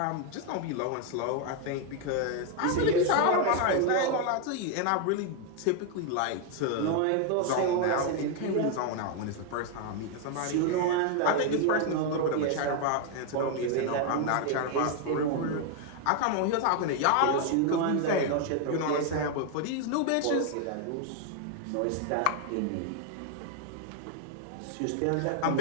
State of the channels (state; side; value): different; both; correlation 0.01